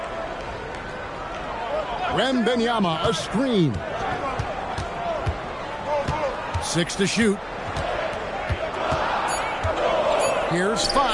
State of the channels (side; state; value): both; identical; correlation 1.00